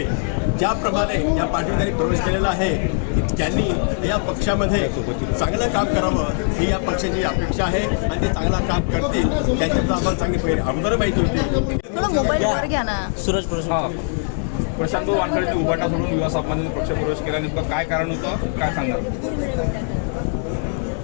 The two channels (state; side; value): silent; right; 58 dB below the other